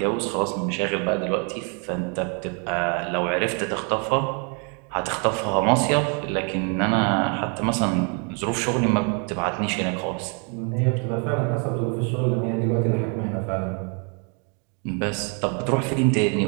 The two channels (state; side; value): quieter; left; 37.4 dB